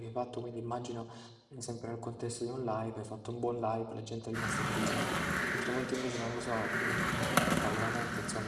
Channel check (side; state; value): both; identical; correlation 1.00